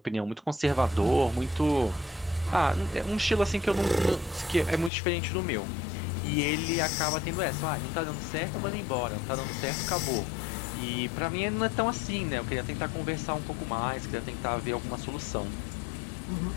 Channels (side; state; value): right; drops out; at 4.9 s